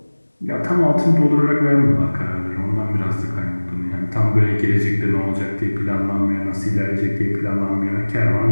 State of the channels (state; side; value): inverted; both; correlation -1.00